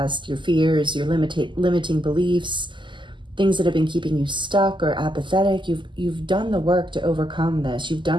your fears, your limiting beliefs, things that have been keeping you stuck or apathetic, you've done the work to overcome this. You've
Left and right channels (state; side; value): late; left; 0.23 ms